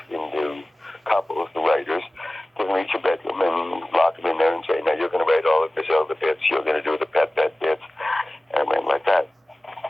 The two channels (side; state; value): both; normal; correlation 0.97